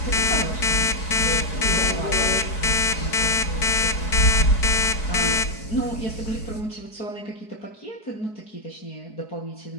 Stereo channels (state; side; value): late; right; 4.6 ms